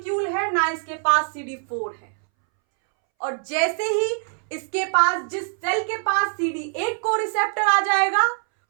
है, ना इसके पास CD4 है। और जैसे ही इसके पास, जिस सेल के पास CD8 को रिसेप्टर आ जाएगा,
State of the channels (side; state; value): left; silent; 63 dB below the other